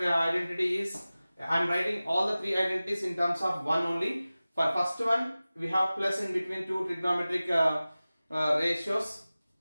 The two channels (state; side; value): inverted; both; correlation -0.97